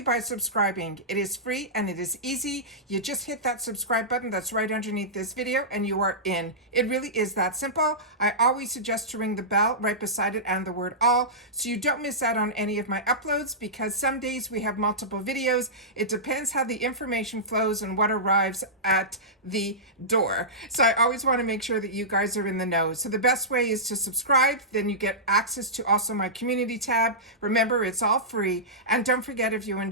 by subscribing. It is free and it is easy. You just hit that subscribe button that's right underneath this video and you are in. It really is that simple. I always suggest to ring the bell right beside it and the word all so you don't miss out on any of my uploads, because some days we have multiple videos. It depends how the information flows and what arrives at the door. So I always want to make sure that you guys are in the know. So the best way is to subscribe, then you get access to also my community tab. Remember, it's all free. And don't forget, if you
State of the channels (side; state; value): both; normal; correlation -0.16